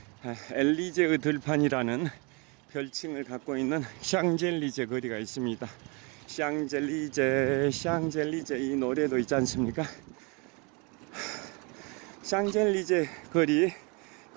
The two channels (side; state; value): left; quieter; 31.1 dB